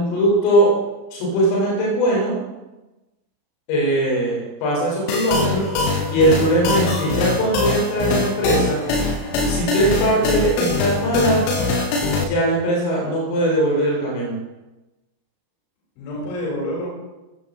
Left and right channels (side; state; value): right; late; 34 ms